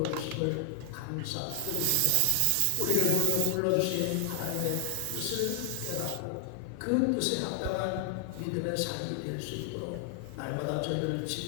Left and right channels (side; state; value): both; different; correlation 0.00